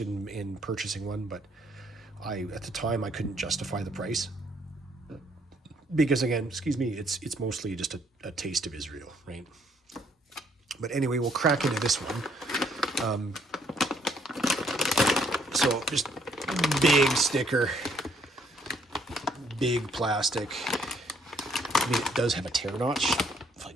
in purchasing one, but at the time I couldn't justify the price, because again, excuse me, it's mostly just a taste of Israel, right? But anyway, we'll crack into this one. So just big sticker, big plastic, I mean, it does have a tear notch, if I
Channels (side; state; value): both; normal; correlation 0.67